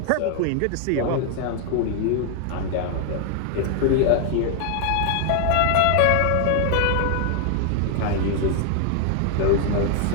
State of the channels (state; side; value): different; both; correlation 0.00